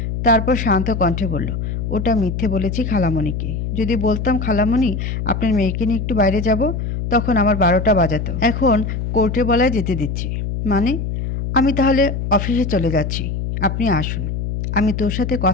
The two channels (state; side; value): noise; left; hum, 3 dB below the sound